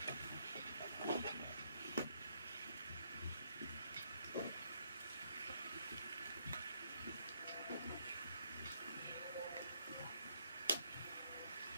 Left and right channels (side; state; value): both; inverted; correlation -0.73